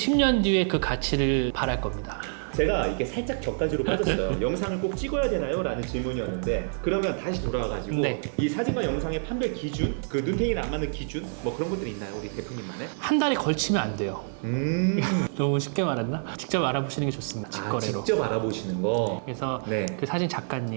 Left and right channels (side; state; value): left; silent; 58 dB below the other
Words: 뒤에 그 가치를 바랄 겁니다. 제가 이게 살짝 격가지로 빠졌어요. 영상을 꼭 찍어야 되나요? 라는 질문이었는데 그러면 다시 돌아와가지고 네. 이 사진과 영상의 판별 기준, 그 눈탱이를 안 맞는 기준 뭐 그런 것들이 있나요? 우리 대표님만의? 한 달에 걸치면 안 돼요. 너무 쉽게 말했나? 직접 알아보시는 게 좋습니다. 아, 직거래로. 직접 알아보시는 거. 그래서 네. 그 사진